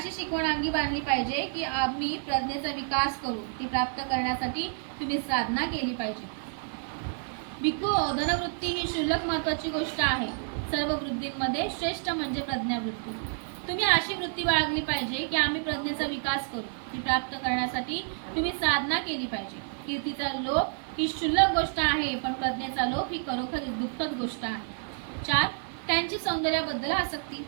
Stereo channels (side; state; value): left; silent; 58 dB below the other